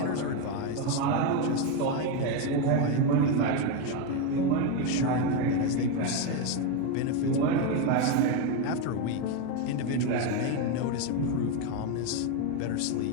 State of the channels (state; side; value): different; both; correlation 0.03